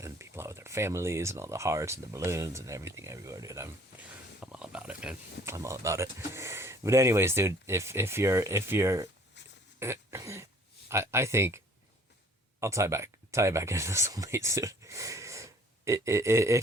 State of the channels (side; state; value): both; normal; correlation 0.55